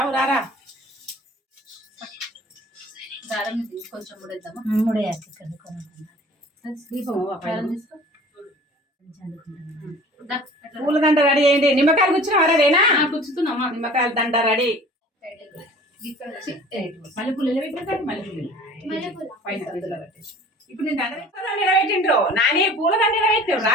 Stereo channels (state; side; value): normal; both; correlation 0.46